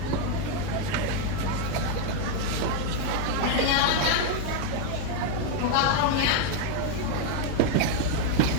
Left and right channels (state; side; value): different; both; correlation 0.00